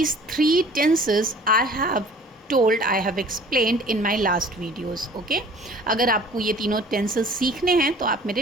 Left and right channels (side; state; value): both; normal; correlation 0.49